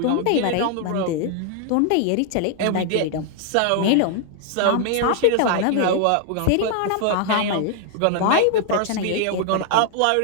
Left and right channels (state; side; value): different; both; correlation 0.00